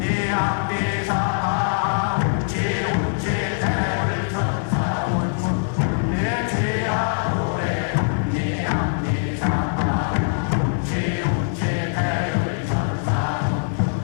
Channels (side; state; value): right; silent; 61 dB below the other